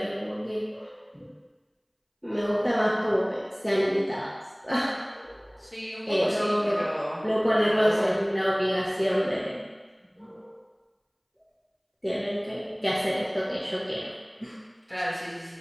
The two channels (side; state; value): both; identical; correlation 1.00